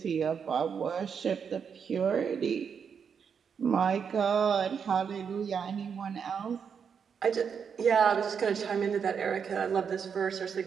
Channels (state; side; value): quieter; left; 6.8 dB